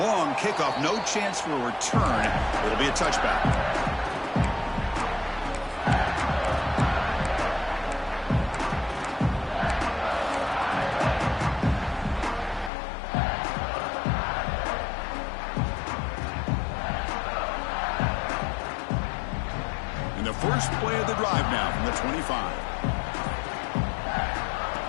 kickoff, no chance for a return. It'll be a touchback. And the first play of the drive now from the 25.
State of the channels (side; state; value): right; drops out; at 12.7 s